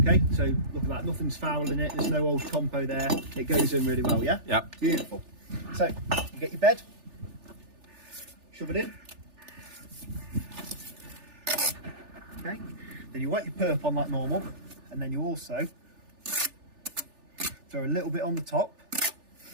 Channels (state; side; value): late; left; 3.4 ms